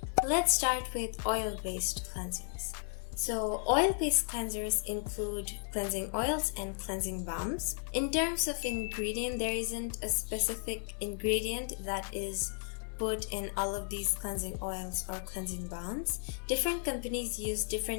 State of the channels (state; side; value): silent; right; 55 dB below the other